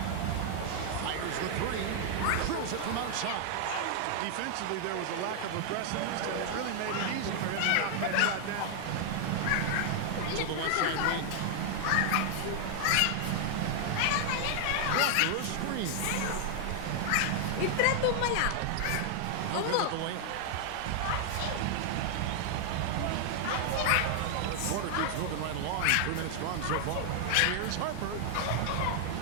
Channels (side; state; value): both; different; correlation 0.00